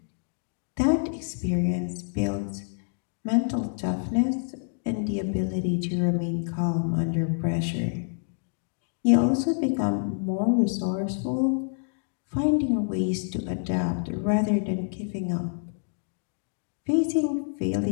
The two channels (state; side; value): silent; right; digital silence